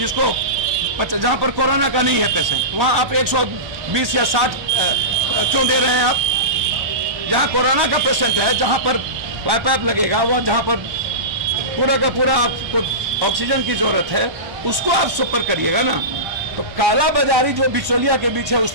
जहां पर कोरोना का नहीं है पेशेंट, वहां आप 120 या 60 क्यों दे रहे हैं आप? जहां कोरोना का पेशेंट है, जहां पर पाइप लगेगा, वह जहां पर पूरा का पूरा आपको ऑक्सीजन की जरूरत है, उसको आप सुपर करिएगा ना। तो काला बाजारी जो बिचौलिया के बीच है, उस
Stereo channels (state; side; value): late; left; 1.1 ms